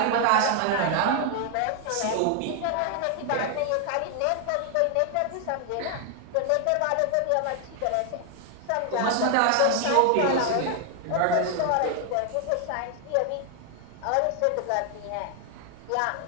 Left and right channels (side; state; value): both; different; correlation 0.00